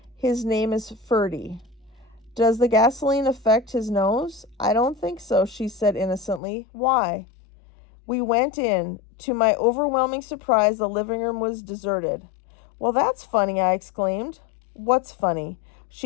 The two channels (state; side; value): drops out; right; at 6.4 s